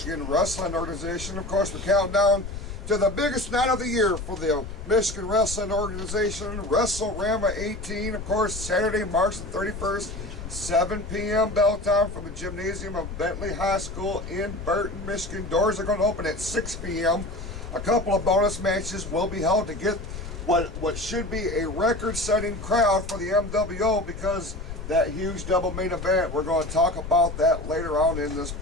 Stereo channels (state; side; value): noise; left; rumble, 9 dB below the sound